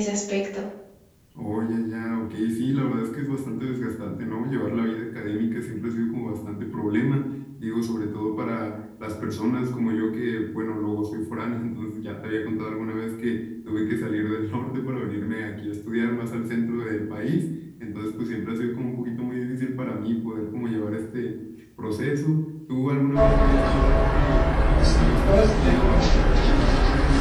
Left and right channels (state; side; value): identical; both; correlation 1.00